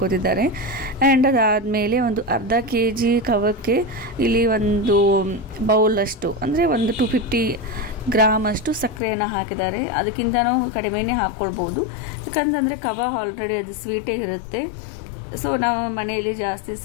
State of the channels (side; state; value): right; drops out; at 9.0 s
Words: ಆ್ಯಂಡ್ ಅದಾದಮೇಲೆ ಒಂದು ಅರ್ಧ kg ಕವಕ್ಕೆ ಇಲ್ಲಿ ಒಂದು ಬೌಲಷ್ಟು, ಅಂದರೆ ಒಂದು 250 ಗ್ರಾಮ್ ಅಷ್ಟು ಸಕ್ಕರೆಯನ್ನು ಹಾಕಿದ್ದಾರೆ. ಅದಕ್ಕಿಂತನೂ ಕಡಿಮೆನೇ ಹಾಕ್ಕೊಳ್ಬೋದು, ಯಾಕಂತಂದರೆ ಕವ ಆಲ್ರೆಡಿ ಅದು ಸ್ವೀಟೇ ಇರುತ್ತೆ. ಸೊ ನಾವು ಮನೆಯಲ್ಲಿ ಜಾಸ್ತಿ